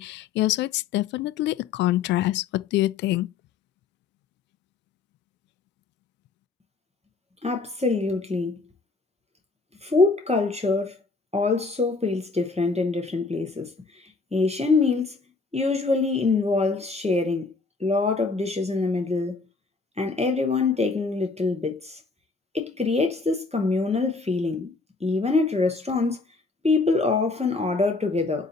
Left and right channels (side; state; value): right; quieter; 4.2 dB